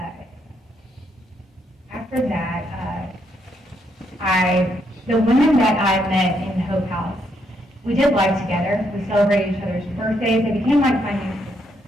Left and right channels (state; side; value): normal; both; correlation 0.76